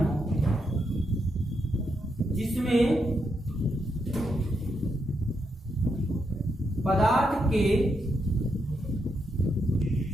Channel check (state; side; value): normal; both; correlation 0.81